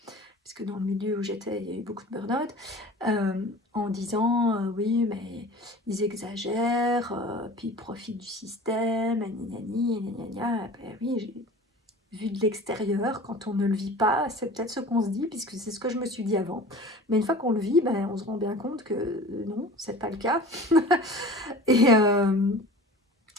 parce que dans le milieu où j'étais, il y a eu beaucoup de burn-out, en disant oui, mais ils exagèrent, puis ils profitent du système, gna gna gna. Ben oui, vu de l'extérieur, quand on ne le vit pas, c'est peut-être ce qu'on se dit, puisque c'est ce que je me suis dit avant. Mais une fois qu'on le vit, ben, on se rend bien compte que non, c'est pas le cas. Et,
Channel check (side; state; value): both; normal; correlation 0.40